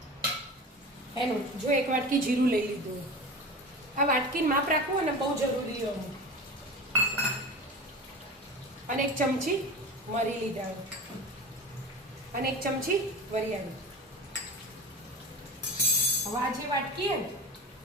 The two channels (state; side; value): normal; both; correlation 0.31